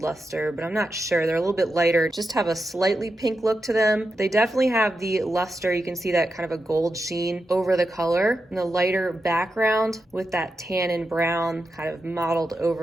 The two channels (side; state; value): both; normal; correlation 0.88